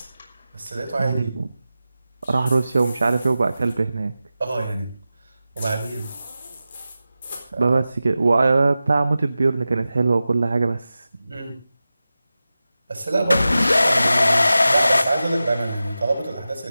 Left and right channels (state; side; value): inverted; both; correlation -0.94